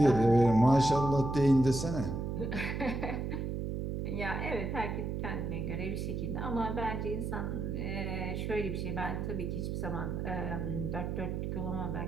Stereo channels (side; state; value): right; noise; hum, 3 dB below the sound